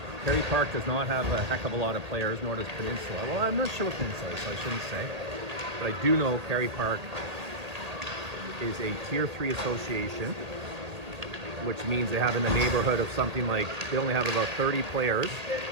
Kerry Park does not have a heck of a lot of players, nor does Peninsula. Well, I'm not sure what Peninsula is, so I shouldn't say. But I do know Kerry Park is a Tier 3 association, which means they have in the neighborhood of something like, they only have about 30 players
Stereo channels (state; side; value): late; left; 1.8 ms